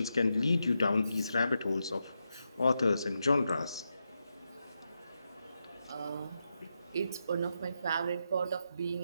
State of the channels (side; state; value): both; inverted; correlation -0.86